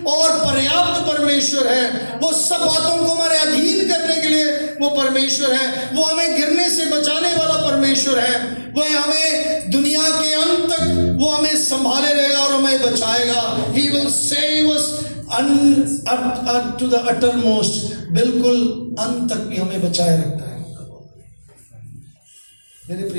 और पर्याप्त परमेश्वर है। वो सब बातों को हमारे अधीन करने के लिए वो परमेश्वर है। वो हमें गिरने से बचाने वाला परमेश्वर है। वह हमें दुनिया के अंत तक वो हमें संभाले रहेगा और हमें बचाएगा। He will save us to the uttermost, बिल्कुल अंत तक भी हमें बचाए रखता है। मेरे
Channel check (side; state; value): both; inverted; correlation -1.00